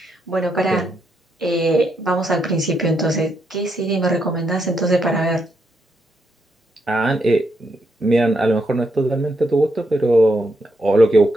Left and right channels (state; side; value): normal; both; correlation 0.79